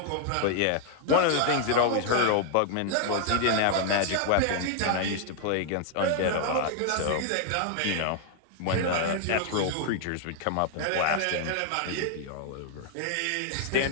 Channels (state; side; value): different; both; correlation 0.00